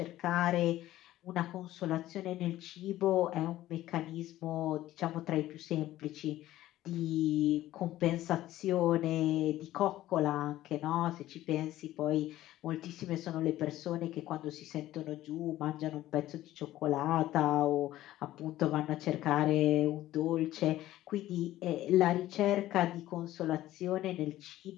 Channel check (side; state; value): right; quieter; 14.7 dB